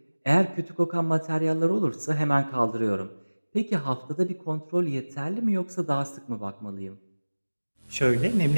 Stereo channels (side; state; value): both; inverted; correlation -1.00